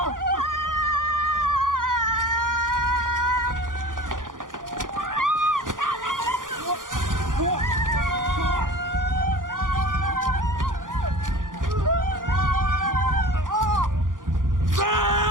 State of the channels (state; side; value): late; left; 0.89 ms